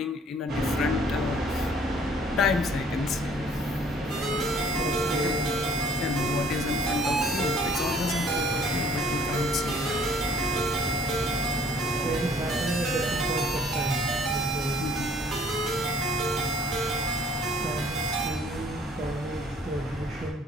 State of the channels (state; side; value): normal; both; correlation 0.57